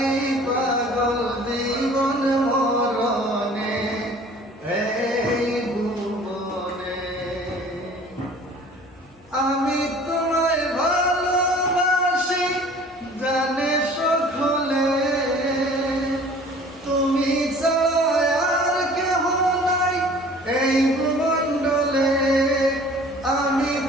পাগল জীবন মরণে, এই ভুবনে। আমি তোমায় ভালোবাসি জানে সকলে, তুমি ছাড়া আর কেহ নাই এই ভূমণ্ডলে। আমি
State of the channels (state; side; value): normal; both; correlation 0.48